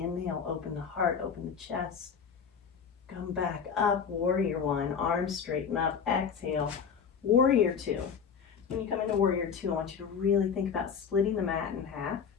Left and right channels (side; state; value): right; quieter; 6.7 dB